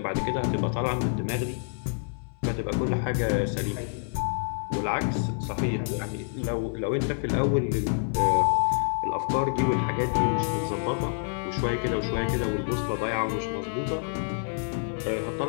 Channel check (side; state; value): right; silent; 60 dB below the other